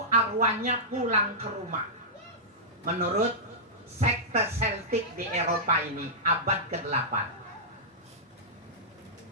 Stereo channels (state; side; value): normal; both; correlation -0.13